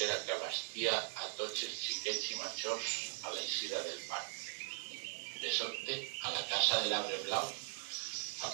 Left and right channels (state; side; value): silent; left; digital silence